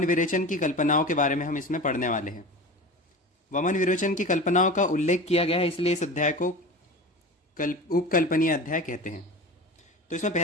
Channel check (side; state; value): both; normal; correlation 0.32